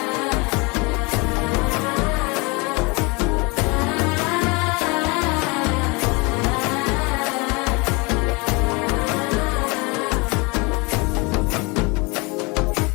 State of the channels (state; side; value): quieter; right; 27.8 dB